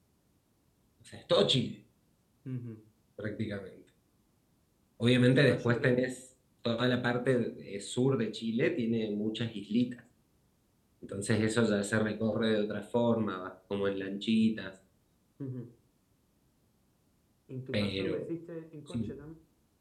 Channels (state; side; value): identical; both; correlation 1.00